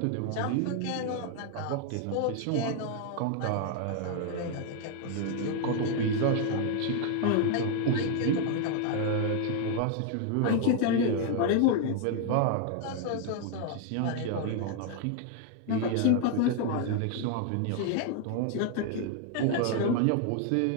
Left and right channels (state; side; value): different; both; correlation 0.00